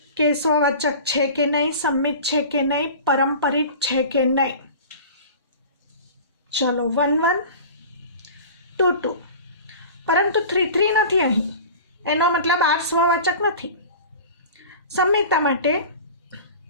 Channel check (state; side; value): inverted; both; correlation -0.38